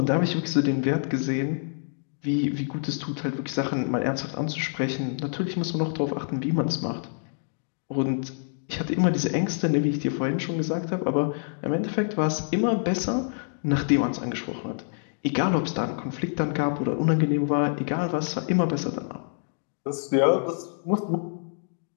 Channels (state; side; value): silent; right; digital silence